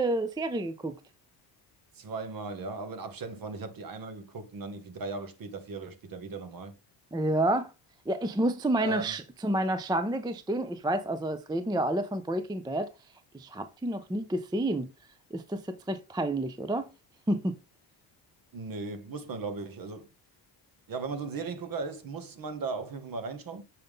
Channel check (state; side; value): normal; both; correlation 0.55